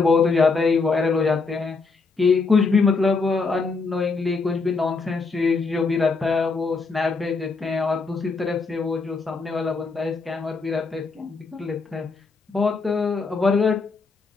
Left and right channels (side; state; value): right; quieter; 4.3 dB